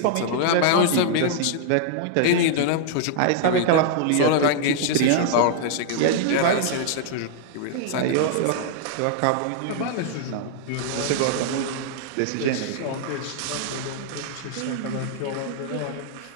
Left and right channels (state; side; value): different; both; correlation -0.01